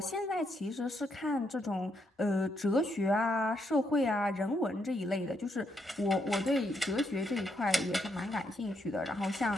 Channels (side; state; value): both; normal; correlation 0.78